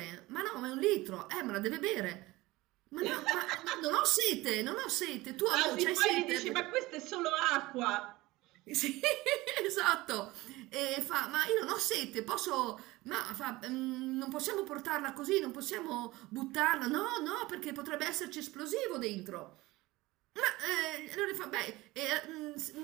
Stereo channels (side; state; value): left; quieter; 19.8 dB